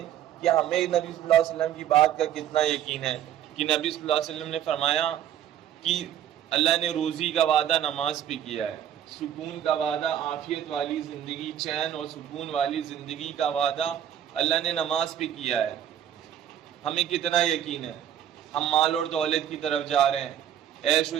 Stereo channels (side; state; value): left; quieter; 10.5 dB